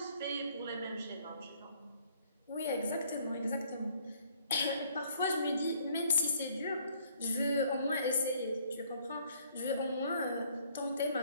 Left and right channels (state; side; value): inverted; both; correlation -0.62